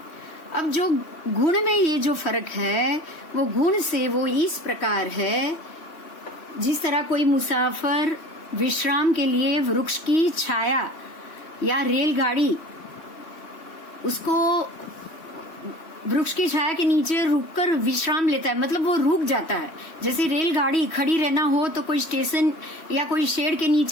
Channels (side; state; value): right; late; 3.1 ms